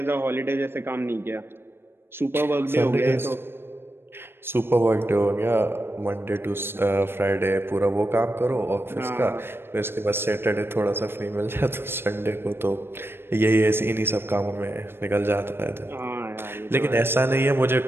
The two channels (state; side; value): late; left; 0.11 ms